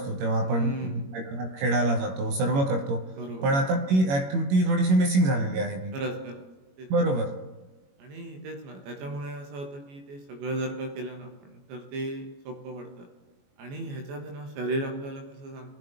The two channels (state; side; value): late; left; 22 ms